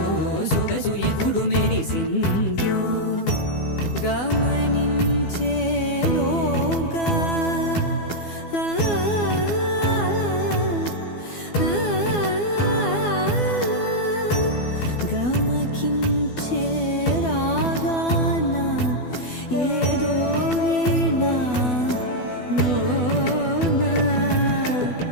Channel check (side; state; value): right; late; 12 ms